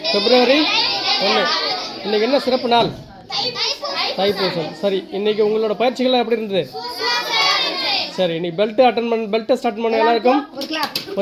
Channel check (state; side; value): identical; both; correlation 1.00